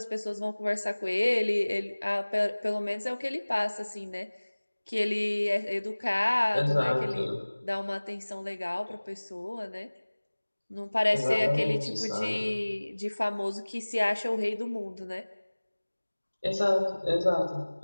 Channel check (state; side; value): inverted; both; correlation -1.00